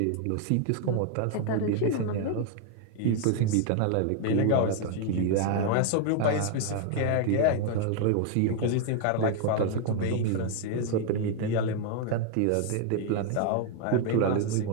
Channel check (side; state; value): both; different; correlation 0.00